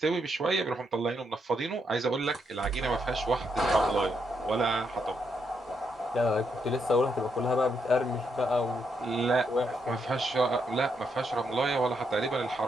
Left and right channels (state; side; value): normal; both; correlation 0.79